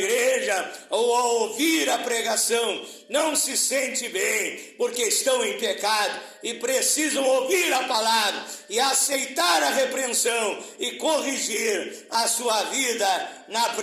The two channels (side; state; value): both; identical; correlation 1.00